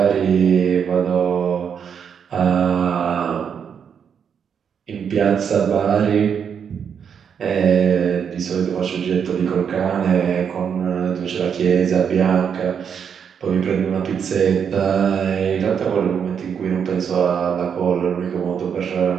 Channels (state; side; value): quieter; left; 7.4 dB